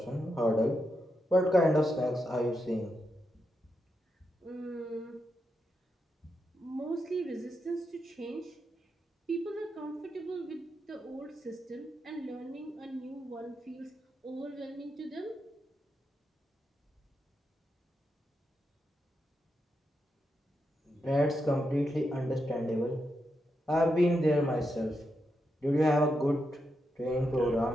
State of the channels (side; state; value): both; normal; correlation 0.85